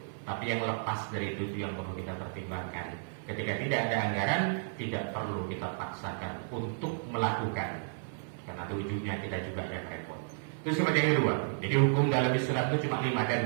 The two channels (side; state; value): left; silent; 56 dB below the other